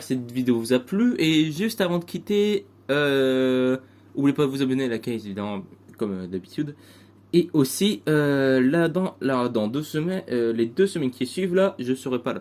que cette vidéo vous a plu, et juste avant de quitter, n'oubliez pas de vous abonner à la chaîne évidemment comme d'habitude. Et aussi, dans 2 semaines, les 2 semaines qui suivent, là, je serai pas là.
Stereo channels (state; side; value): identical; both; correlation 1.00